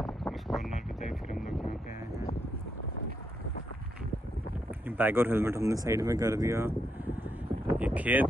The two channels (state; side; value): normal; both; correlation 0.80